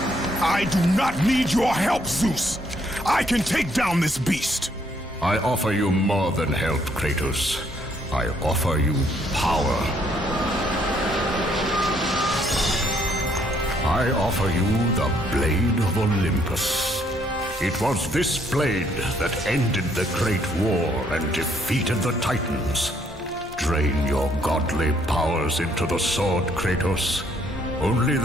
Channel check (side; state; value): both; normal; correlation 0.68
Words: I do not need your help, Zeus. I can take down this beast. I offer you more than help, Kratos. I offer you power. I offer you the Blade of Olympus. It was this blade that ended the Great War and defeated the Titans. Drain your godly powers into the sword, Kratos. Only